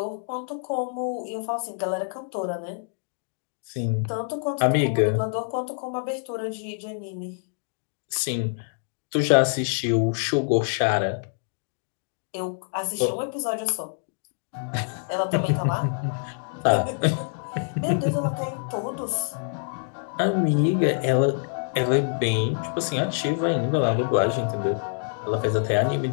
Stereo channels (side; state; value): right; silent; digital silence